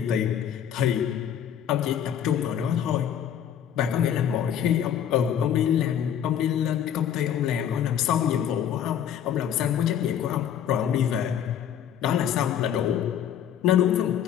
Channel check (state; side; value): quieter; right; 9.4 dB